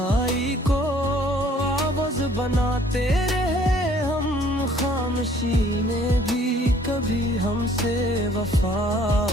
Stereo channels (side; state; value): both; normal; correlation 0.58